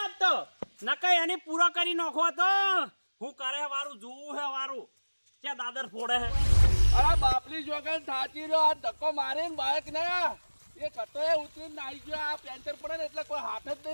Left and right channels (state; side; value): inverted; both; correlation -1.00